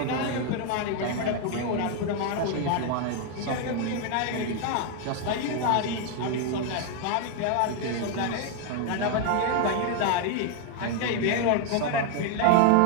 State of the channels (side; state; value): both; different; correlation 0.00